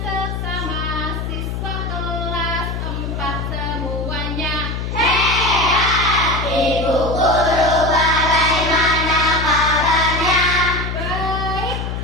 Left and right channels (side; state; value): left; noise; hum, 4 dB below the sound